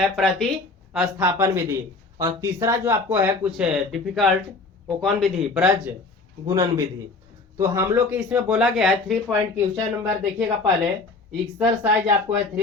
प्रतिस्थापन विधि, और तीसरा जो आपको है कुछ डिफिकल्ट, वो कौन विधि? ब्रज गुणन विधि। तो हम लोग के इसमें बोला गया है 3 पॉइंट क्वेश्चन नंबर देखिएगा पहले, एक्सरसाइज आपको है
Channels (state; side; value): quieter; right; 3.7 dB